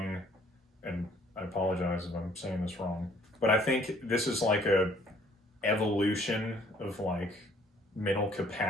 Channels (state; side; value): normal; both; correlation 0.60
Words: and I apologize if I'm saying this wrong, but I think this is like a evolution of like mental